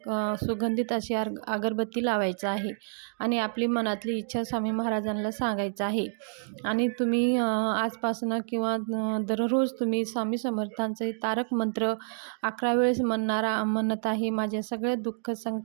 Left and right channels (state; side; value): silent; left; 59 dB below the other